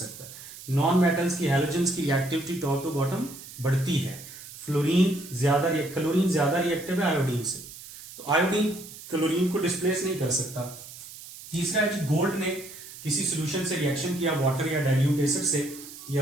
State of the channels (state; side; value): noise; right; hiss, 15 dB below the sound